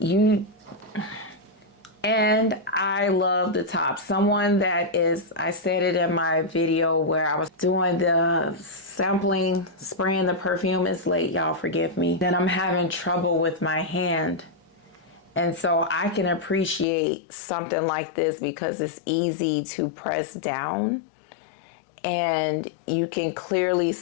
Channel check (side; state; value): right; drops out; at 16.9 s